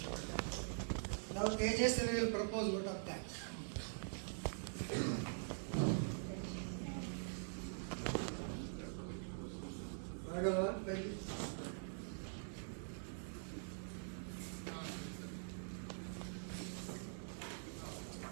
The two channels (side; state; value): left; silent; digital silence